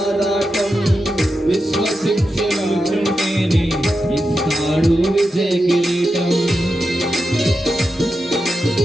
విశ్వసించి నిలుచుంటేనే ఇస్తాడు విజయ కిరీటం.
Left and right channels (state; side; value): normal; both; correlation 0.89